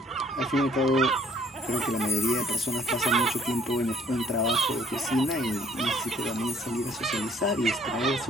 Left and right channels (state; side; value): normal; both; correlation 0.61